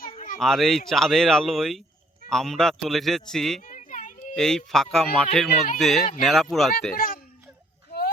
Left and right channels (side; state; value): both; normal; correlation 0.63